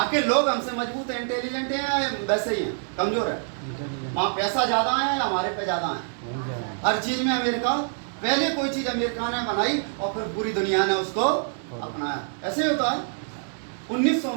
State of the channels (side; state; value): left; silent; 61 dB below the other